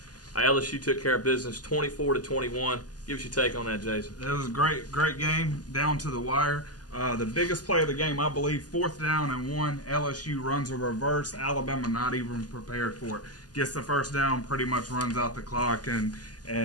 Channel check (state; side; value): late; right; 0.69 ms